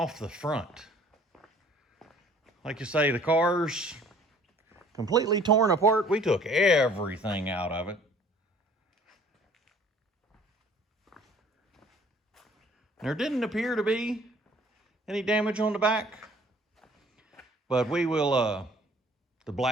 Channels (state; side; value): normal; both; correlation 0.55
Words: the front. Like you say, the car's completely torn apart. We took everything out of it. There didn't appear to be any damage on the back, but we will, the